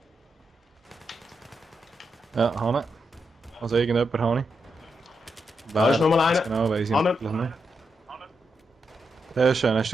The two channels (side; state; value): both; normal; correlation 0.84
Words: Ja, Hanne. Also irgendjemand habe ich. Da ist nochmal einer. Genau, weiss ich Hanne. natürlich nicht. Sehr schön. Hast du